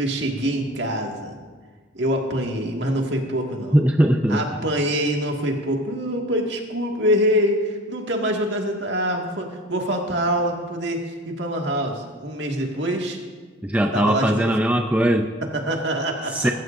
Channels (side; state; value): both; normal; correlation 0.44